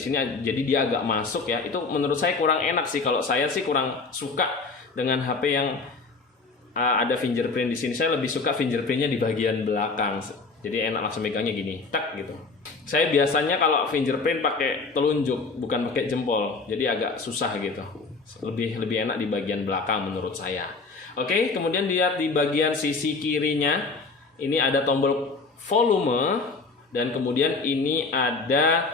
jadi dia agak masuk ya. Itu menurut saya kurang enak sih. Kalau saya sih kurang suka dengan HP yang ada fingerprint di sini. Saya lebih suka fingerprintnya di bagian belakang. Jadi enak langsung megangnya gini, tak gitu. Saya biasanya kalau fingerprint pakai telunjuk, bukan pakai jempol. Jadi agak susah gitu. Lebih enak di bagian belakang menurut saya. Oke, kemudian lihat di bagian sisi kirinya, ini ada tombol volume, dan kemudian ini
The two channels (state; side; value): quieter; right; 4.2 dB